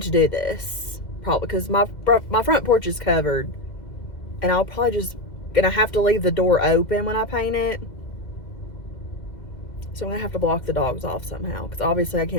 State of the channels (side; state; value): right; late; 2.0 ms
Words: to do this probably because my front porch is covered, and I'll probably just gonna have to leave the door open when I paint it. So I'm gonna have to block the dogs off somehow, because obviously I